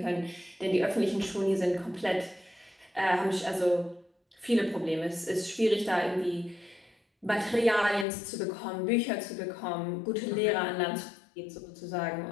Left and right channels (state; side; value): drops out; right; at 8.1 s